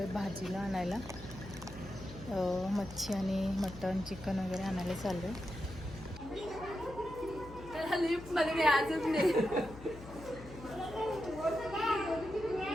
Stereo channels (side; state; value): left; noise; hum, 15 dB below the sound